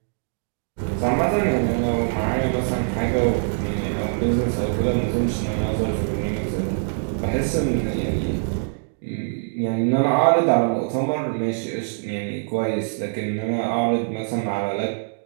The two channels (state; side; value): silent; left; digital silence